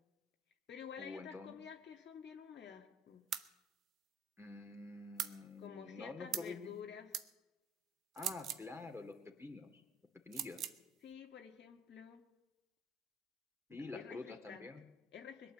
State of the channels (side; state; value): both; normal; correlation 0.56